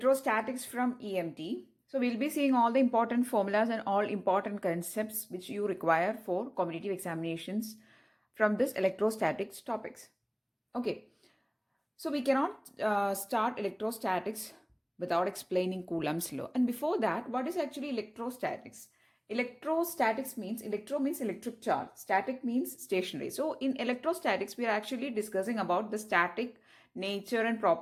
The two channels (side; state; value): both; identical; correlation 1.00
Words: from EMT. So we'll be seeing all the important formulas and all important concepts which you require for competitive examinations from this electrostatics topics. Okay, so we cannot start electrostatics without explaining Coulomb's law. And before that, what is actually electrostatics? Electrostatics means electro means electric charge, static means stationary. So in electrostatics, we are actually discussing about the static nature and